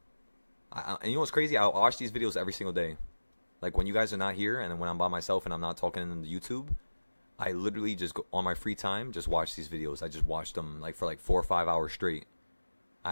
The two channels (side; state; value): both; inverted; correlation -1.00